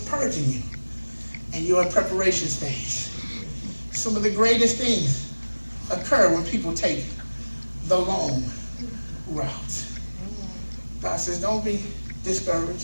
purging you. And you're in preparation stage. Some of the greatest things occur when people take the long route. God says, don't be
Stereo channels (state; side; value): inverted; both; correlation -1.00